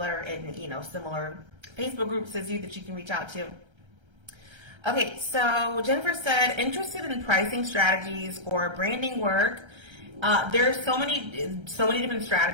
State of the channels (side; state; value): left; late; 1.3 ms